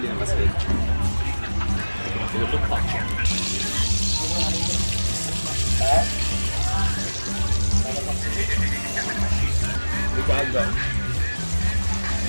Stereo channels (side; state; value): both; inverted; correlation -1.00